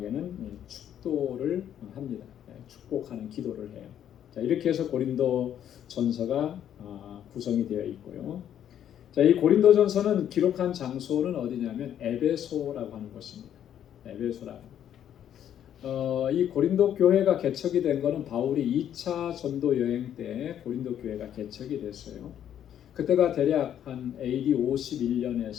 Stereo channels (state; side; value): quieter; right; 10.1 dB